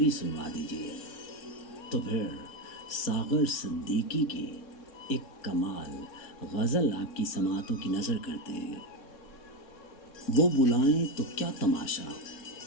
सुनवा दीजिए। तो फिर सागर सिद्दीकी की एक कमाल गज़ल आपकी समातों की नज़र करते हैं। वो बुलाएं तो क्या तमाशा,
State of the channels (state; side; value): late; right; 3.6 ms